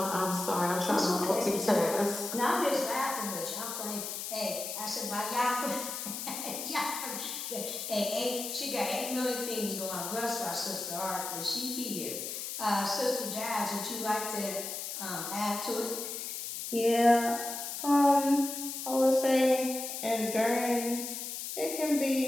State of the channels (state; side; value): noise; left; hiss, 6 dB below the sound